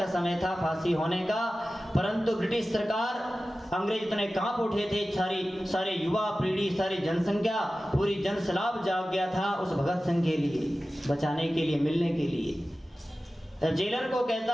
समय था फांसी होने का। परंतु ब्रिटिश सरकार, अंग्रेज इतने कांप उठे थे, सारे युवा पीढ़ी, सारी जनसंख्या, पूरी जनसैलाब जाग गया था उस भगत सिंह के लिए, बचाने के लिए, मिलने के लिए। जेलर को कहता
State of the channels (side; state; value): both; normal; correlation 0.95